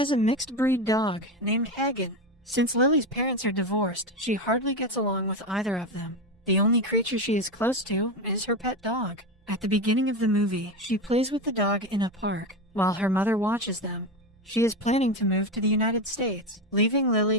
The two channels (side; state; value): both; normal; correlation 0.16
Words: a mixed-breed dog named Hagen. Since Lily's parents are divorced, she hardly gets along with either of them. The only creature she is close to is her pet dog. At the beginning of the movie, she plays with the dog in a park, while her mother watches them. She is planning to move to the United States, leaving